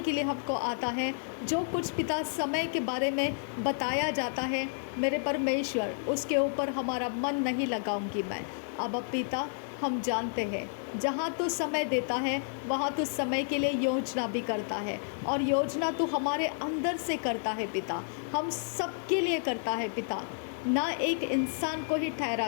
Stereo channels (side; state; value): right; silent; 57 dB below the other